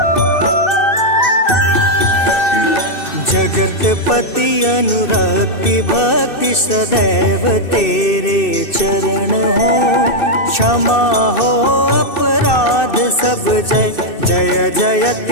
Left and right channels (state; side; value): late; right; 2.6 ms